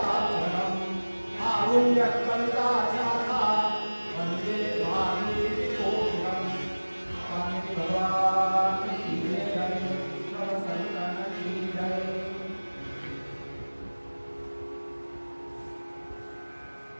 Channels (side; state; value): both; inverted; correlation -1.00